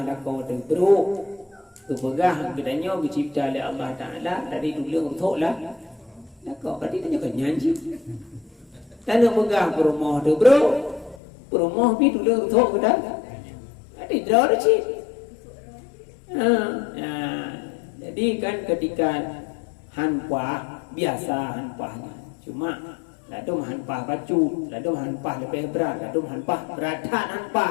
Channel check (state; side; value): drops out; right; at 11.2 s